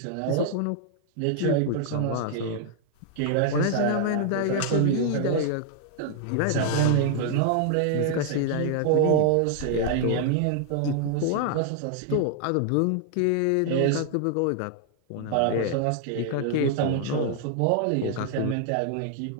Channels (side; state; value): both; different; correlation 0.00